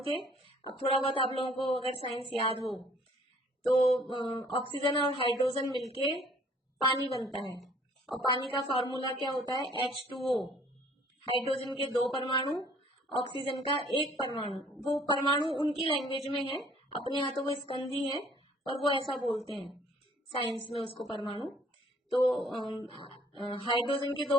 थे। अब थोड़ा बहुत आप लोगों को अगर साइंस याद हो तो ऑक्सीजन और हाइड्रोजन मिलके पानी बनता है, और पानी का फॉर्मूला क्या होता है? H2O। हाइड्रोजन के 2 परमाणु, ऑक्सीजन का 1 परमाणु। वो परमाणु उनकी लैंग्वेज में है, अपने यहाँ तो वो स्कंदी है, पर वो ऐसा बोलते हैं साइंस में उसको परमाणु। तो हाइड्रोजन के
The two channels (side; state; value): both; normal; correlation 0.58